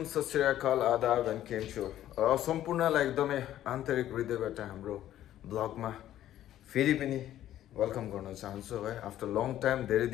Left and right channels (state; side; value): quieter; right; 12.5 dB